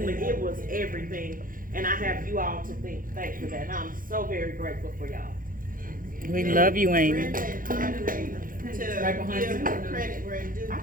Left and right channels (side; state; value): left; late; 0.40 ms